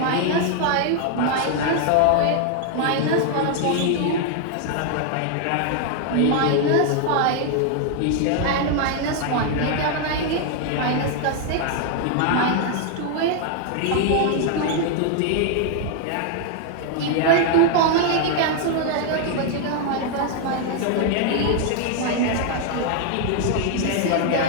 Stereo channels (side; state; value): both; different; correlation 0.00